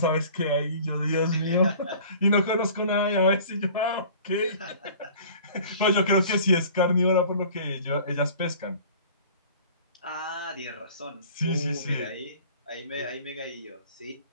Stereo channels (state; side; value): inverted; both; correlation -0.46